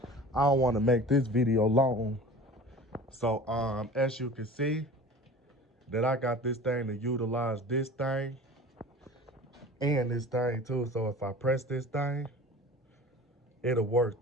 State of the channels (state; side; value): normal; both; correlation 0.40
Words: I don't want to make this video long. So as you can see that I got this thing to utilize this thing and this thing too. So if I press this thing, it'll work